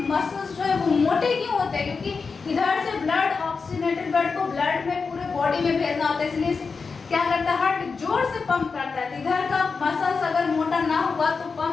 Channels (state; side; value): quieter; right; 4.9 dB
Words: मसल्स जो है वो मोटे क्यों होते हैं, क्योंकि इधर से ब्लड, ऑक्सीजनेटेड ब्लड को ब्लड में पूरे बॉडी में भेजना होता है, इसलिए क्या करता है, हार्ट जोर से पंप करता है। इधर का मसल्स अगर मोटा ना हुआ तो